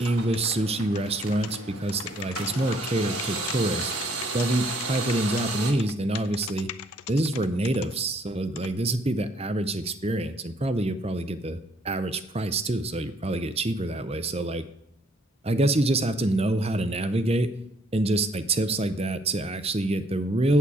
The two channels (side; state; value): both; normal; correlation 0.66